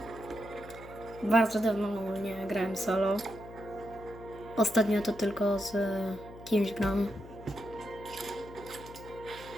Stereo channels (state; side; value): noise; left; hum, 16 dB below the sound